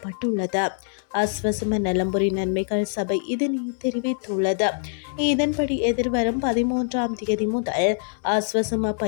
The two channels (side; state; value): right; silent; 63 dB below the other